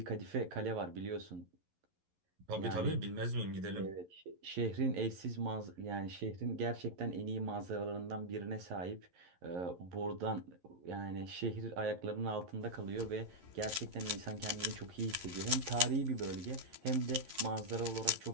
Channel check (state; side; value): late; left; 11 ms